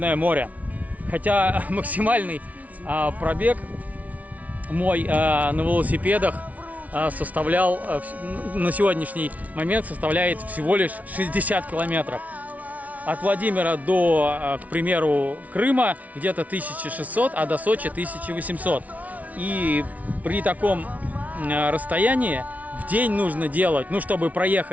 море. Хотя максимальный пробег мой на велосипедах составлял на сегодняшний момент составляет всего лишь 60 километров. От Владимира до, к примеру, Крыма где-то 1600, а до Сочи 1800. И при таком расстоянии в день нужно делать, ну, чтобы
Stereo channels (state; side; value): late; left; 0.071 ms